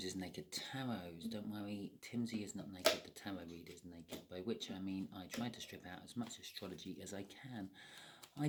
Naked Tarots. Don't worry, Timsy is not naked, the tarot reader is naked, by which I mean I try to strip out as much astrology as I can. I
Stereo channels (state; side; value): identical; both; correlation 1.00